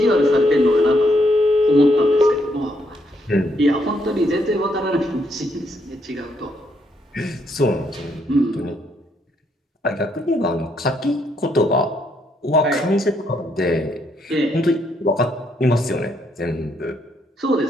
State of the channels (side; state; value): both; normal; correlation 0.74